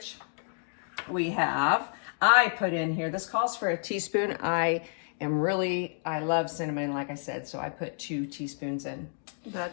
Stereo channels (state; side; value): silent; right; 58 dB below the other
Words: we have. I put in here, this calls for a teaspoon. I love cinnamon, like I said, so I put 2 teaspoons in. That